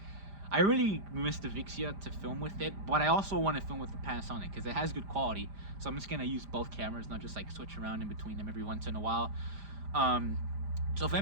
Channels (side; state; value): left; late; 5.0 ms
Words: I really miss the Vixia to film with it, but I also want to film with the Panasonic because it has good quality. So I'm just going to use both cameras, not just like switch around in between them every once in a while. So